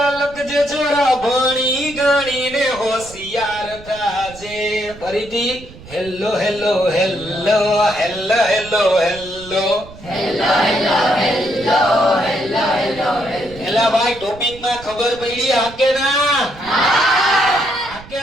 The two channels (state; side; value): noise; right; rumble, 19 dB below the sound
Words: લખજે છોરા ભણી ગણીને હોશિયાર થાજે. ફરીથી hello hello hello hello hello hello એલા ભાઈ ટોપિક માં ખબર પડી હા કે ના? હા કે